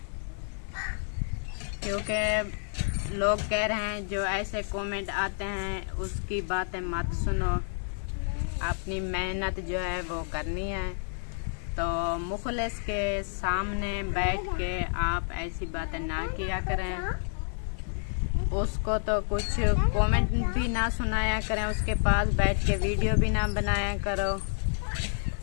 क्योंकि लोग कह रहे हैं जो ऐसे कमेंट आते हैं उसकी बातें मत सुनो, अपनी मेहनत जो है वो करनी है। तो मुखलिस के सामने बैठ के आप ऐसी बातें ना किया करें, उसको तो कुछ कमेंट भी ना सुनाया करें, उसके पास बैठ के वीडियो भी ना बनाया करो।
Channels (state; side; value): silent; right; 58 dB below the other